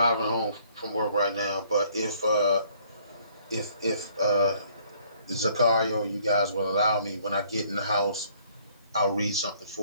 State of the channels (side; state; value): both; inverted; correlation -0.62